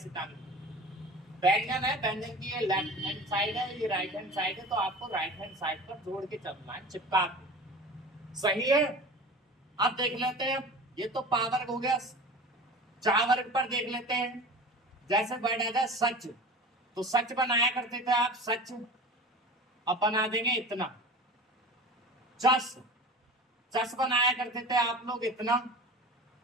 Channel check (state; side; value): normal; both; correlation 0.36